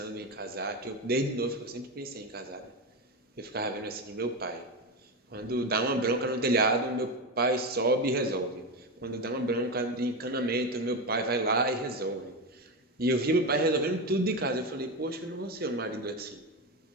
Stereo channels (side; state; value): both; normal; correlation 0.15